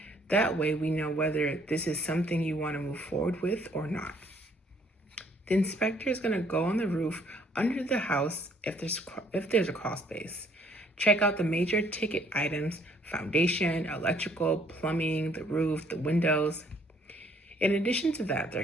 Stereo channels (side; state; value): both; normal; correlation 0.63